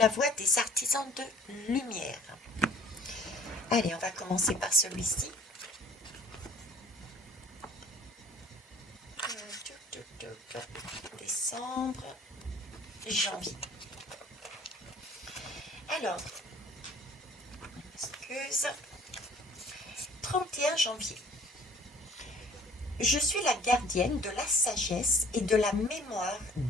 voix des artisans de lumière. Allez, on va commencer par celui-ci. Décembre, janvier. Alors, excuse, 31 janvier. Je suis la gardienne de la sagesse et de la mémoire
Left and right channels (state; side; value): normal; both; correlation 0.53